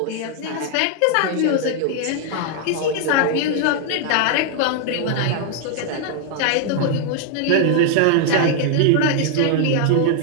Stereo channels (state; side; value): different; both; correlation 0.00